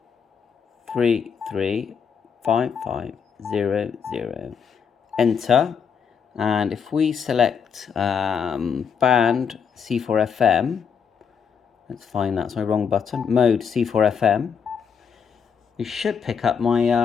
Enter. And if we select band C4FM, let's find that's my wrong button. Mode C4FM. We should pick up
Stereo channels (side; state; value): right; quieter; 6.8 dB